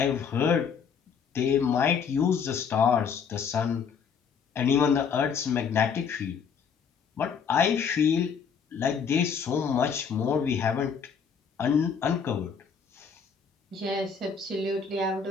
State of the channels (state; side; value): quieter; right; 6.5 dB